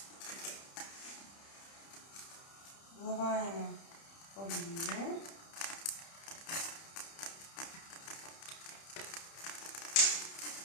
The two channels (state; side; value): late; right; 30 ms